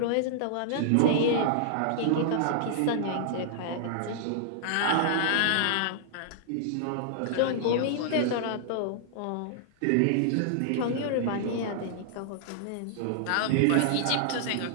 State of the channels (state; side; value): different; both; correlation -0.01